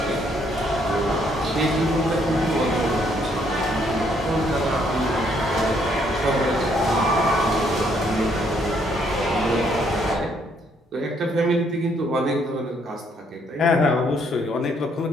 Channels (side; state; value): both; normal; correlation 0.69